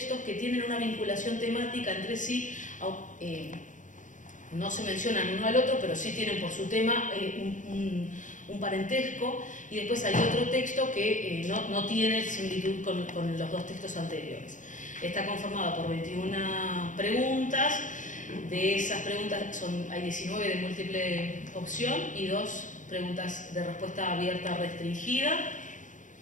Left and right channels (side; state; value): right; late; 0.37 ms